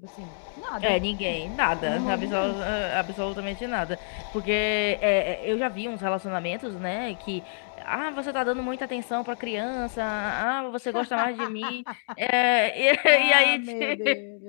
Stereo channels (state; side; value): silent; right; digital silence